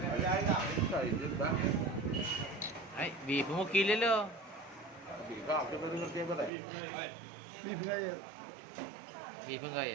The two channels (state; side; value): drops out; left; at 6.5 s